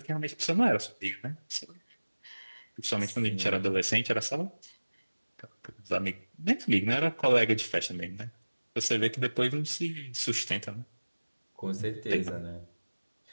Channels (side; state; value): both; inverted; correlation -1.00